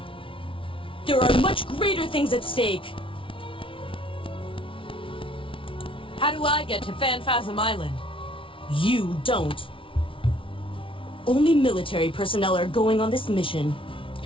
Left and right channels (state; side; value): late; right; 0.25 ms